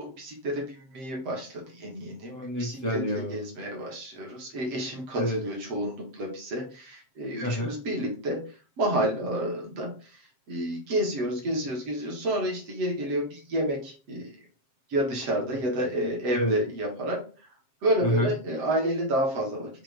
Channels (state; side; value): late; left; 7.6 ms